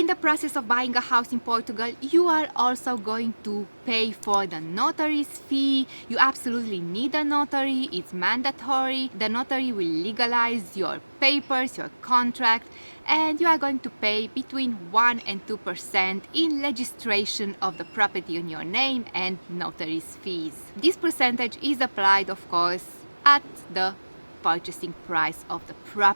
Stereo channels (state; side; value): inverted; both; correlation -1.00